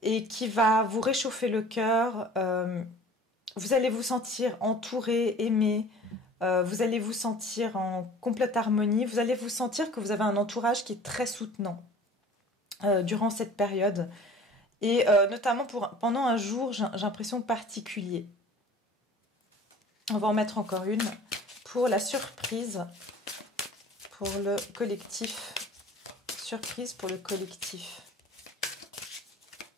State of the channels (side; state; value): both; normal; correlation 0.46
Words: et qui va vous réchauffer le cœur. Vous allez vous sentir entouré, aimé. Vous allez vous sentir en complète harmonie. Vous allez vous sentir que vous avez un entourage qui est très soutenant durant cette période. Et notamment pendant un jour, j'ai l'impression particulier. On va en mettre encore une pour la surprise pour le collectif. Surprise pour le collectif.